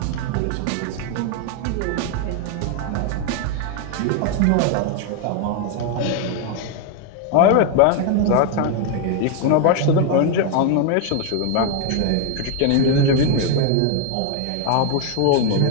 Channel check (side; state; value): both; different; correlation 0.01